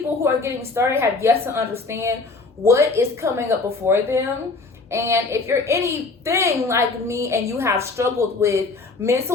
who are getting started have yet to understand what is coming up before them. And if you're anything like me and you have struggled with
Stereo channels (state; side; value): quieter; right; 3.8 dB